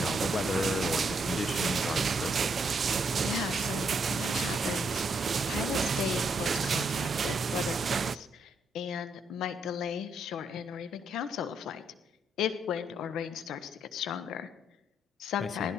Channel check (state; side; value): normal; both; correlation 0.75